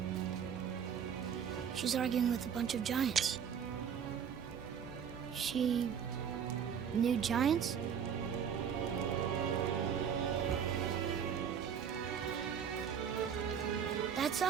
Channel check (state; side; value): quieter; left; 7.8 dB